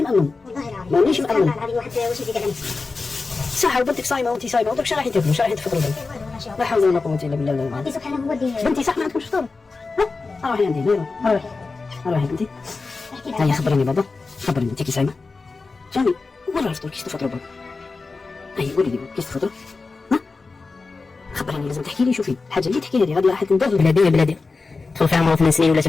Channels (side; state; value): right; quieter; 4.1 dB